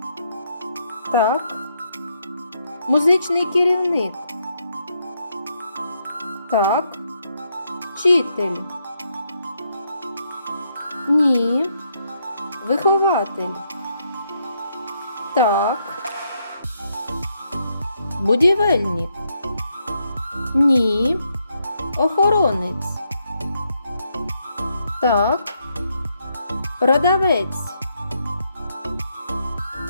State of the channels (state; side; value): inverted; both; correlation -0.77